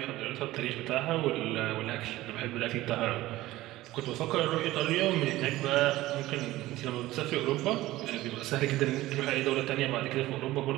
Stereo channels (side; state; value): left; quieter; 16.9 dB